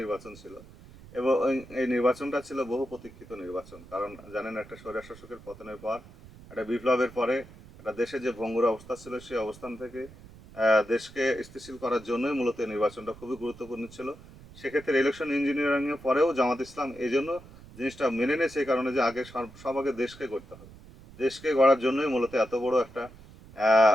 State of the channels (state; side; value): noise; right; rumble, 20 dB below the sound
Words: নির্বাচন ছিল এবং এই নির্বাচনটা ছিল বহু প্রতীক্ষিত নির্বাচন। কারণ জানেন, একটা স্বৈরশাসকের পতনের পর, একটা বিপ্লবের পরে একটা দেশে যে ভঙ্গুর অবস্থা ছিল, সেই অবস্থান থেকে দেশকে স্থিতিশীল করার জন্যই মূলত এই নির্বাচনটা খুবই গুরুত্বপূর্ণ ছিল। সেক্ষেত্রে ইলেকশন ইঞ্জিনিয়ারিং এর পরেও জামাত ইসলাম এই জন্য জিনিসটা মেনে নিয়েছে, এই কারণে যে আগে সব আগে দেশকে করতে হবে। দেশকে গড়ার জন্যই মূলত এত বড় একটা আহ,